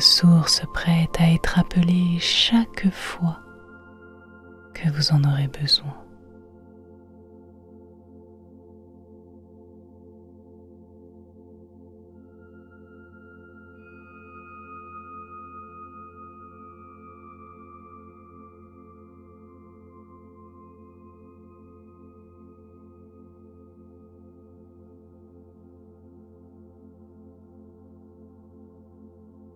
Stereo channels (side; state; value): both; identical; correlation 1.00